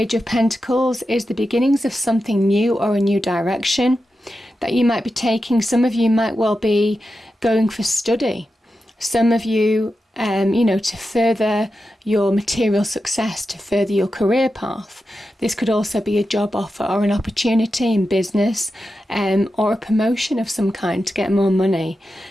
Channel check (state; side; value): normal; both; correlation 0.90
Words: of Pentacles is the beginnings of something new or a new direction that you might be taking. Some of you might well be going for study. Some of you, to further your material success, to further your career path. This could also be a job offer or an opportunity in business, or a promotion of some kind to get more money.